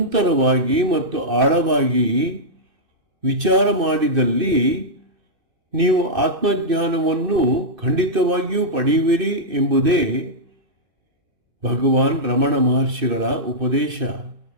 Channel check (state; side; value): late; left; 2.6 ms